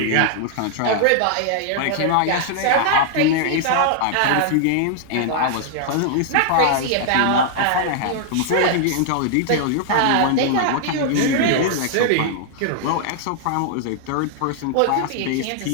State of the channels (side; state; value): both; different; correlation -0.01